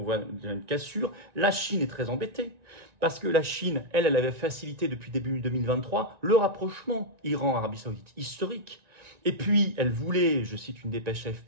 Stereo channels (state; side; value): late; left; 1.9 ms